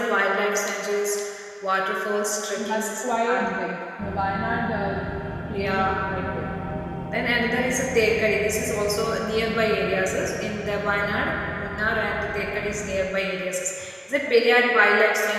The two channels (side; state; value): both; identical; correlation 1.00